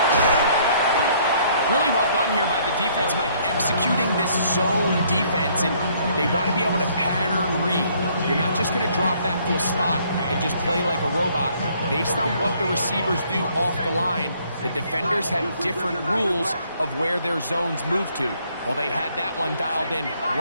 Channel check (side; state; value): both; inverted; correlation -0.64